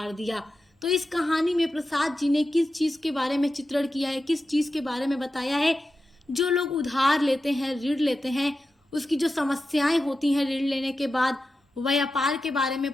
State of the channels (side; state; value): both; normal; correlation 0.91